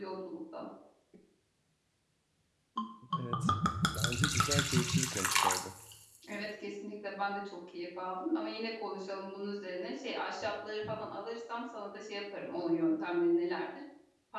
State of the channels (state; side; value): identical; both; correlation 1.00